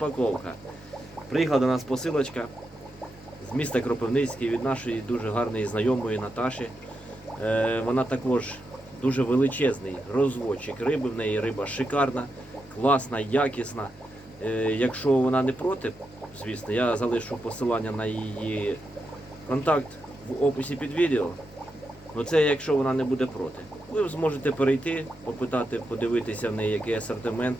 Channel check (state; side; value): normal; both; correlation 0.86